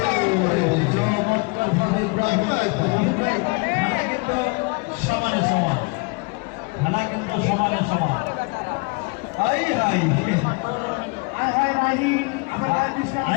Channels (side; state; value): right; quieter; 29.5 dB